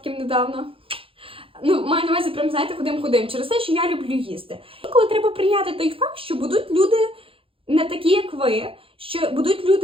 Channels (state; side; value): late; left; 0.27 ms